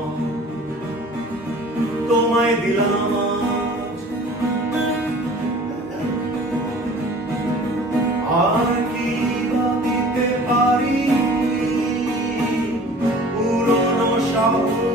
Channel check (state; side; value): normal; both; correlation 0.46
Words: তোমায় দিলাম আজ। আর কি বা দিতে পারি পুরনো শহর